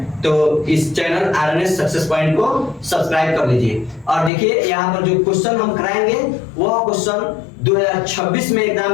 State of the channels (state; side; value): drops out; right; at 4.3 s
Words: तो इस चैनल आरएनएस सक्सेस पॉइंट को सब्सक्राइब कर लीजिए। और देखिए यहाँ पर जो क्वेश्चन हम कराएंगे वह क्वेश्चन 2026 में